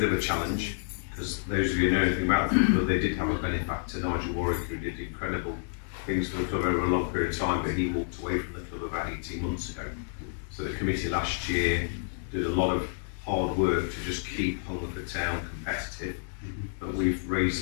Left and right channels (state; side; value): silent; right; 58 dB below the other